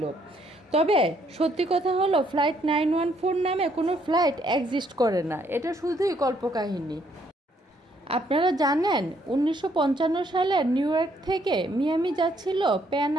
তবে সত্যি কথা হলো, ফ্লাইট 914 নামে কোনো ফ্লাইট এক্সিস্ট করে না, এটা শুধুই কল্পকাহিনী। আপনারা জানেন ১৯৫৫ সালে নিউ ইয়র্ক থেকে মিয়ামি যাচ্ছিল প্যান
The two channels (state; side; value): normal; both; correlation 0.69